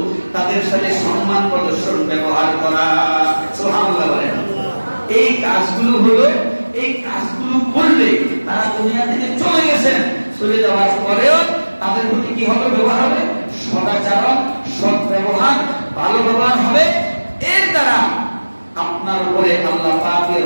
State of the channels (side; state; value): both; inverted; correlation -1.00